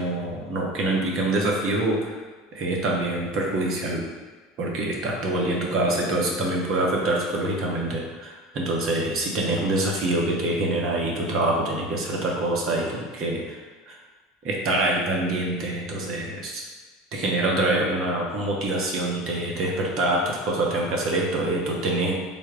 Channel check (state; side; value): normal; both; correlation 0.31